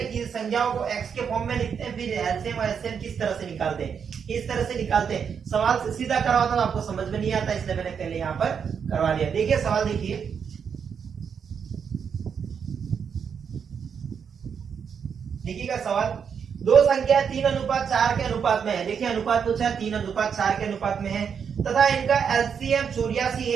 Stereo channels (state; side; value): quieter; left; 7.0 dB